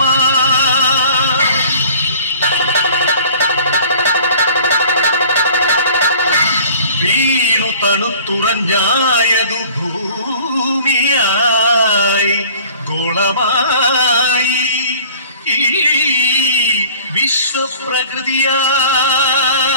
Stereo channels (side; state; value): both; inverted; correlation -0.47